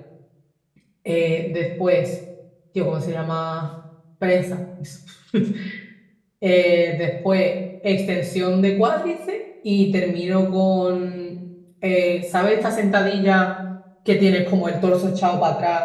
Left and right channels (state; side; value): identical; both; correlation 1.00